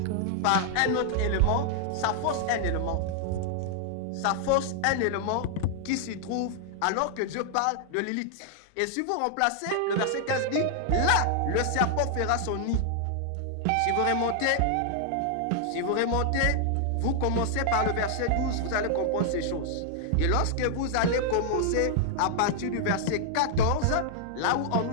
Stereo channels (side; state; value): both; different; correlation -0.01